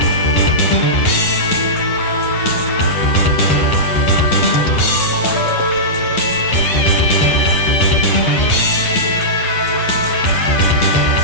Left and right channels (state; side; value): late; right; 9.3 ms